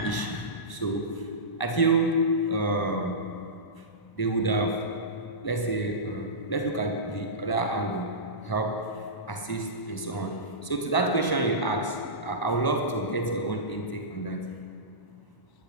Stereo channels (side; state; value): right; late; 1.0 ms